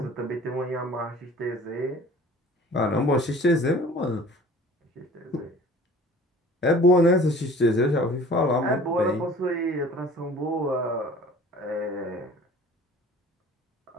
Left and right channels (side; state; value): both; normal; correlation 0.47